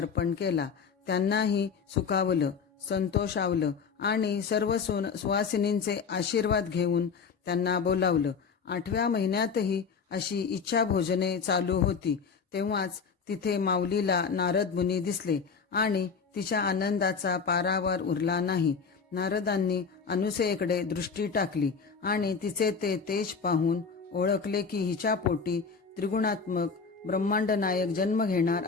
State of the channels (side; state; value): right; quieter; 5.6 dB